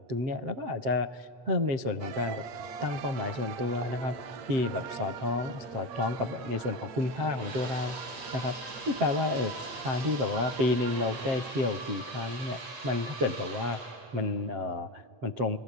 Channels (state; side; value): late; left; 7.6 ms